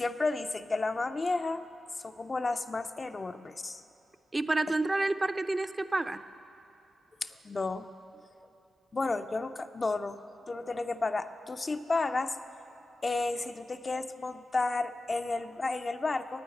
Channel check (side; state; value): both; normal; correlation 0.94